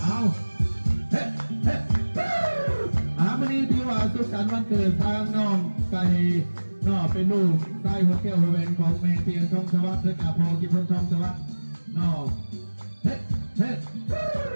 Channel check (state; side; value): inverted; both; correlation -1.00